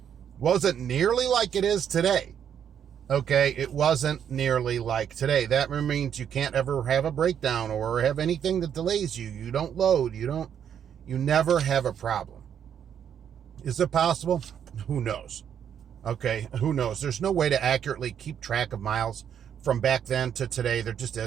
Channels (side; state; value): left; quieter; 8.7 dB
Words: wasn't nearly like it is today. Okay, it wasn't nearly like today. That means you can't ever have a breakdown or have anything that delays you. You don't load. You never have a problem. Is it possible? Who knows? Okay, who knows? There's no way to accurately keep track of miles from back then to today. There just